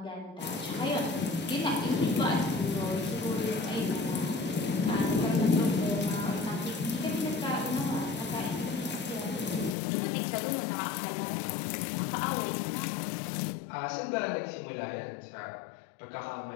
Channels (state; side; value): drops out; right; at 9.8 s